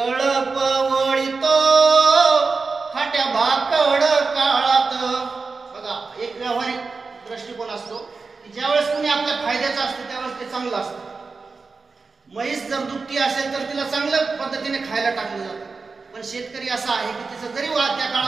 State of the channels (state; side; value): quieter; left; 4.3 dB